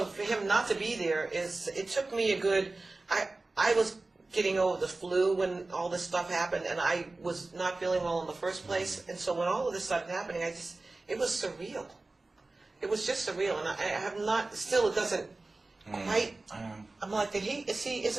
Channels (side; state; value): left; quieter; 3.2 dB